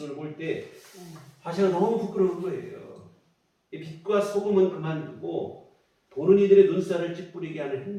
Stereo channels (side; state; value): both; identical; correlation 1.00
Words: 볼 때 제가 너무 부끄러운 거예요. 이 빛과 소금은 그만두고 보는 이들의 눈살을 찌푸리게 하는